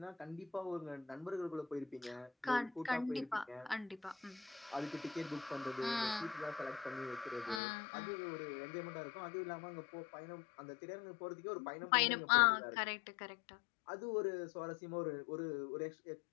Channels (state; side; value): drops out; right; at 7.6 s